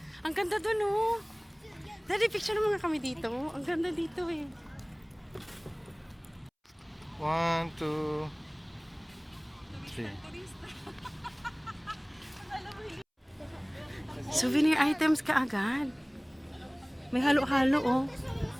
Ang ganda dun, oh. Daddy, picture naman nga kami dito. Ang ganda dito, eh. 1, 2, 3. Souvenir items ka agad. May halo-halo, oh.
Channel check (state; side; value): identical; both; correlation 1.00